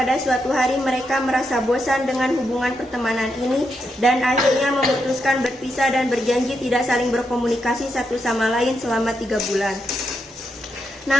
suatu hari mereka merasa bosan dengan hubungan pertemanan ini dan akhirnya memutuskan berpisah dan berjanji tidak saling berkomunikasi satu sama lain selama 3 bulan.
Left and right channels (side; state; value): both; normal; correlation 0.82